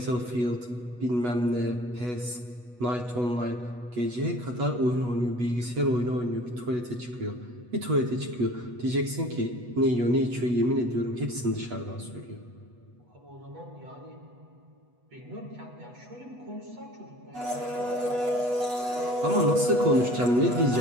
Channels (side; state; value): left; late; 8.2 ms